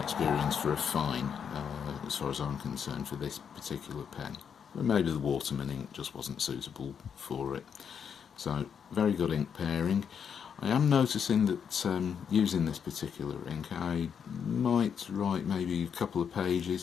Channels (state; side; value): quieter; right; 7.4 dB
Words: for a fine, as far as I'm concerned, for this particular pen. But maybe the Waterman ink just wasn't suitable for it. So, very good ink pairing. I am noticing that using this particular ink, I might write maybe a couple of